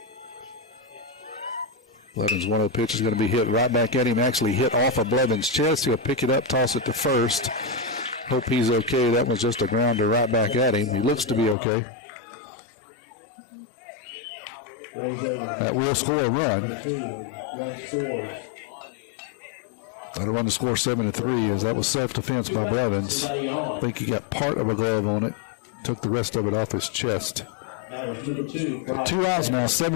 Blevins' 1-0 pitch is going to be hit right back at him. Actually hit off of Blevins' chest. He'll pick it up, toss it to first. Hope he's okay. That was just a grounder right back at him. He looks to be okay. That will score a run. That'll run the score 7-3 as that was self-defense by Blevins. I think he got part of a glove on it. Took the rest of it off his chest. 2 outs now.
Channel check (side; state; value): right; drops out; at 11.6 s